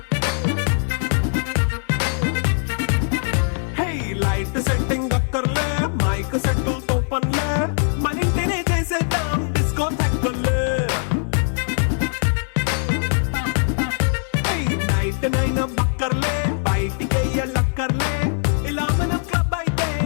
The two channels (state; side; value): silent; right; 65 dB below the other